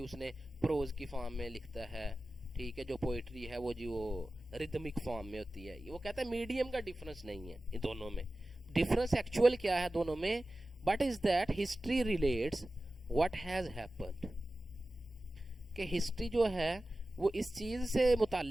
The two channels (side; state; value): both; normal; correlation 0.95